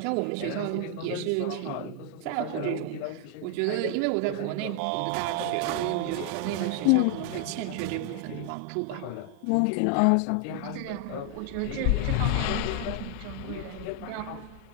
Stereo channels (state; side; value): different; both; correlation 0.00